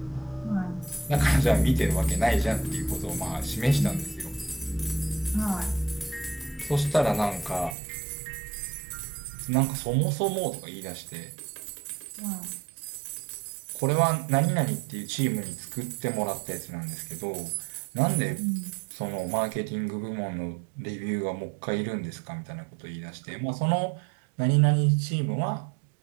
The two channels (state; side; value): drops out; left; at 7.8 s